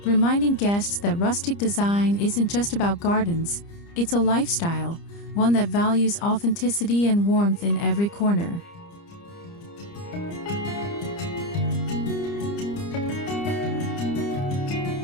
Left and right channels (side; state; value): right; late; 30 ms